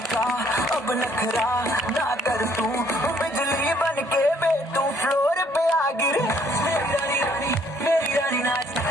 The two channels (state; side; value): normal; both; correlation 0.64